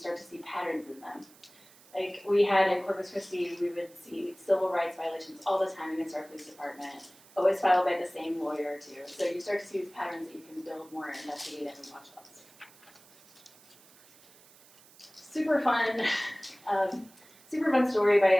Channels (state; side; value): noise; right; hiss, 25 dB below the sound